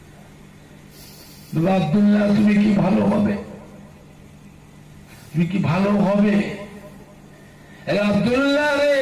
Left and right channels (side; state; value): both; identical; correlation 1.00